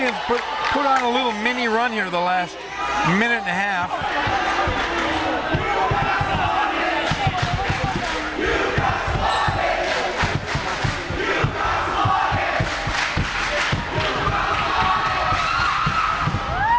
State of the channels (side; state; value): both; identical; correlation 1.00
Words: put on a little mini run here the last minute and a half.